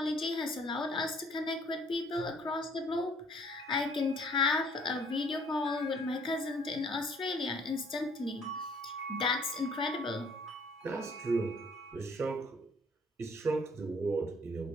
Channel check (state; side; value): normal; both; correlation 0.59